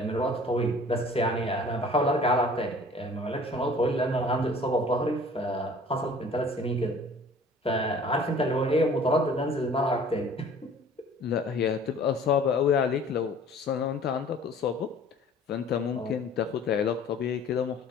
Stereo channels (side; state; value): both; normal; correlation 0.49